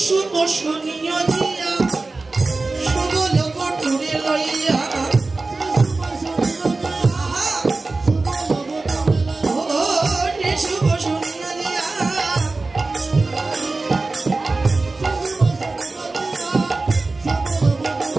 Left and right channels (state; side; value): quieter; left; 3.5 dB